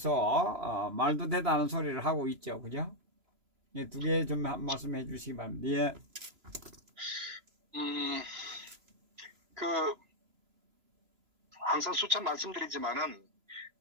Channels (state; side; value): late; left; 3.0 ms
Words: 말도 되다는 소리를 하고 있죠, 그죠? 예, 두 개 좀 말씀해 주시기 바랍니다. 예, 음, 그, 항상 수차 말씀드리지만은,